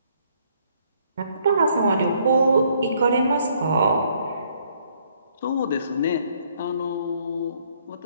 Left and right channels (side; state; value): both; inverted; correlation -0.67